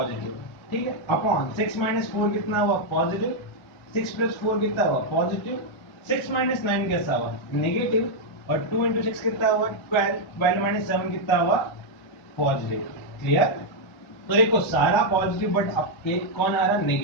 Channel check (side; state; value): right; late; 1.5 ms